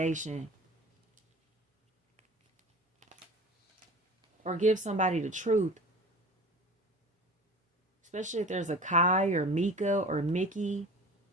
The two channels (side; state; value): both; normal; correlation 0.39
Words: Or give somebody the truth. Especially if there's a Kai or Mika or Mickey,